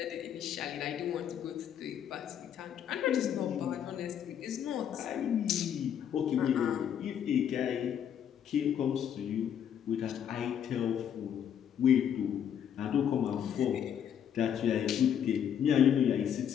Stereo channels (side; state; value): right; quieter; 9.1 dB